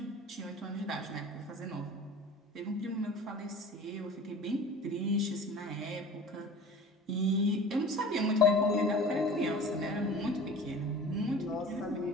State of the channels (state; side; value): normal; both; correlation 0.40